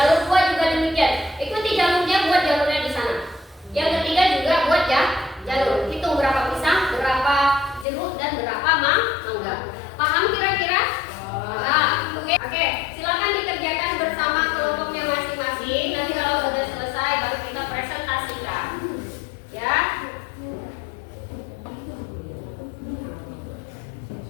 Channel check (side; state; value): right; drops out; at 7.9 s